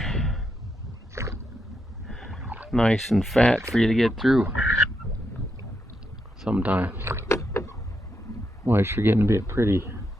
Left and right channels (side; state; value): both; normal; correlation 0.83